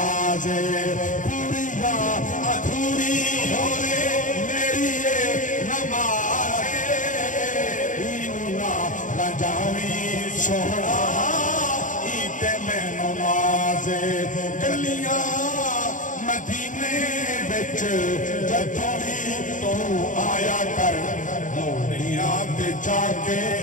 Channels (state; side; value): late; right; 0.37 ms